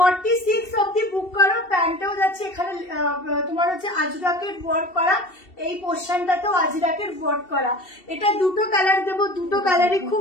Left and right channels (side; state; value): right; late; 2.7 ms